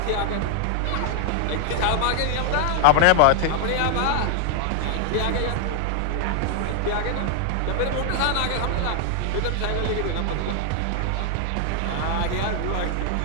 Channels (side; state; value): both; different; correlation 0.00